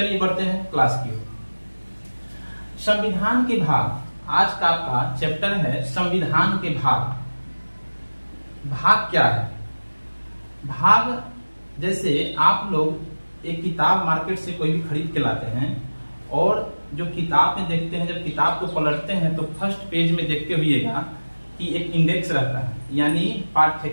बढ़ते हैं क्लास की ओर। संविधान के भाग, आज का आपका चैप्टर है संविधान के भाग। भाग क्या है? भाग जैसे आप लोग एक किताब मार्केट से कोई भी खरीद के लाते हैं और जो किताब में देखते हैं, जब किताब को पलटते हैं तो फर्स्ट पेज में देखते हुएगा कि एक इंडेक्स रहता है, यानी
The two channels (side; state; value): both; inverted; correlation -1.00